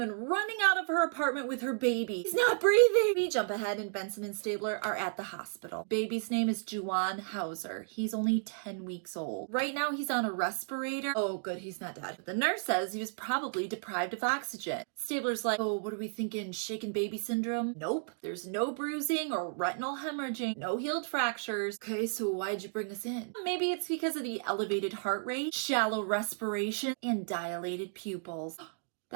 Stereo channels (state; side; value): silent; left; digital silence